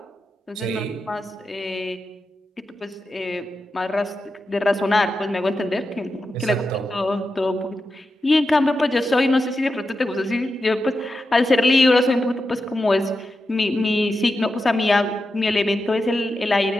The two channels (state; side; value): normal; both; correlation 0.89